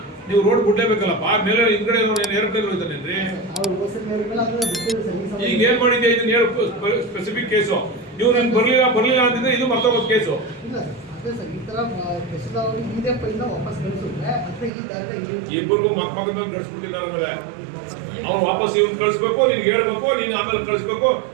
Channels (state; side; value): drops out; left; at 14.7 s